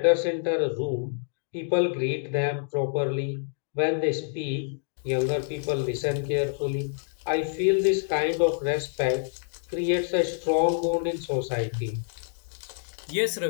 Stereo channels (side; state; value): right; silent; digital silence